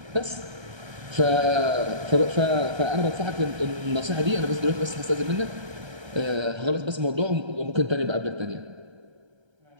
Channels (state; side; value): late; left; 1.3 ms